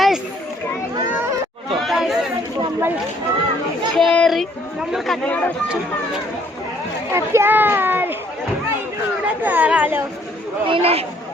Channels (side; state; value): both; normal; correlation 0.63